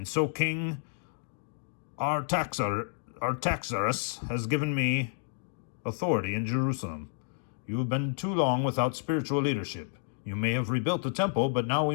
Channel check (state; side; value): silent; right; digital silence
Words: so King Artaxerxes has given me authority in Jerusalem. You have been too long without spiritual leadership. You may have rebuilt the temple, but now we